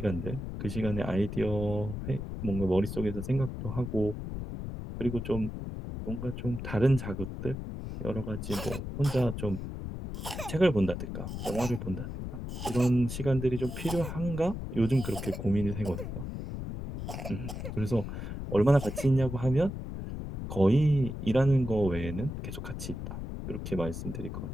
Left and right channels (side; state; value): left; noise; rumble, 6 dB below the sound